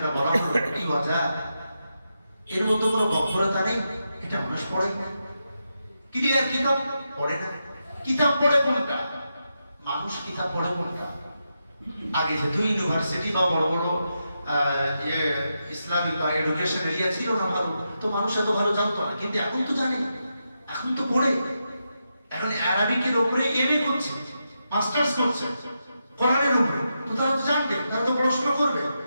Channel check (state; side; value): inverted; both; correlation -0.86